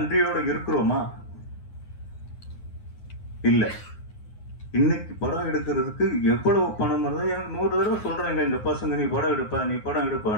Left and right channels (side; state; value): right; late; 9.6 ms